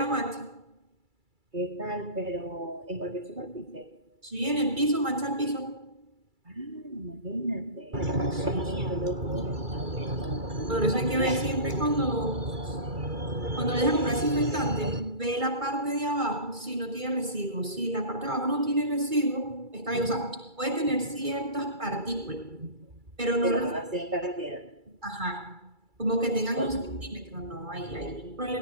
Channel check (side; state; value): left; late; 2.3 ms